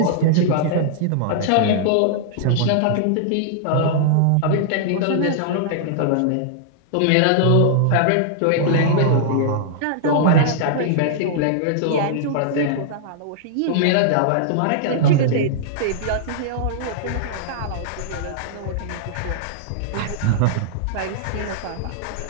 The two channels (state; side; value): different; both; correlation -0.01